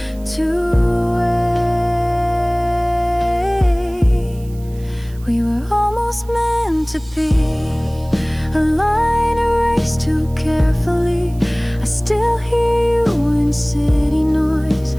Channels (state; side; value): noise; right; hiss, 25 dB below the sound